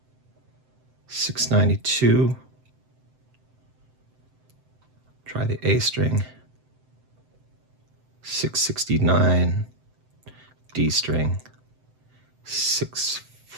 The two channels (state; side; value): late; left; 7.8 ms